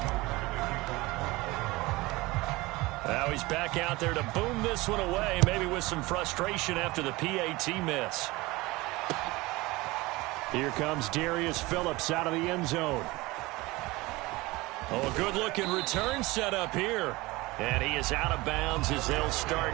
Now he's back out there to boom this one away, maybe with some frustration after the PAT miss. Here comes Darius Phillips out of the end zone. Oh, a good-looking return set up here. And he is out of bounds as they'll start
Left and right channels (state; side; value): quieter; left; 21.5 dB